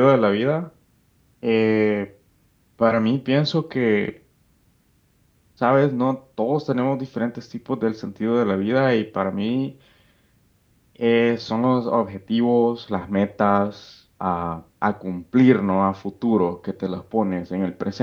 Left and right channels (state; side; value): identical; both; correlation 1.00